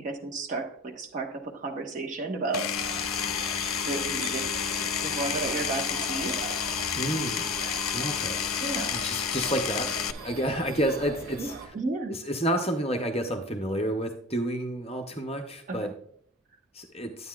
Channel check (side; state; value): both; normal; correlation 0.35